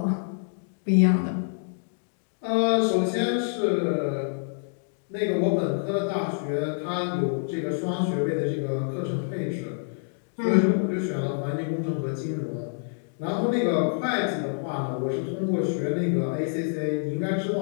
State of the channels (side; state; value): right; silent; digital silence